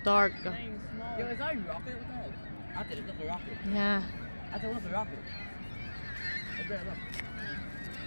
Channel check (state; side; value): inverted; both; correlation -1.00